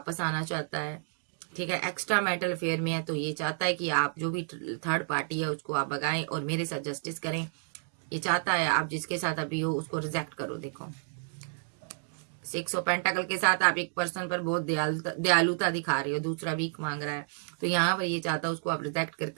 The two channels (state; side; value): silent; left; digital silence